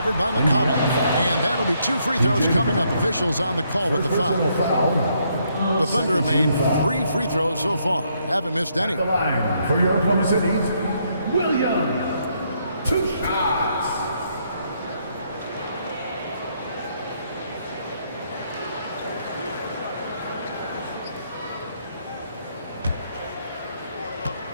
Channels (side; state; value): both; inverted; correlation -0.73